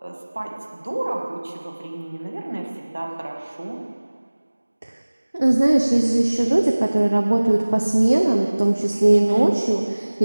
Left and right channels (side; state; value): both; inverted; correlation -1.00